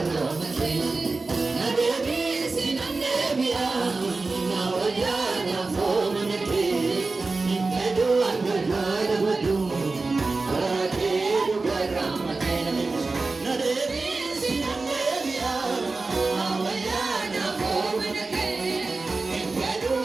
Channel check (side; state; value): left; quieter; 3.7 dB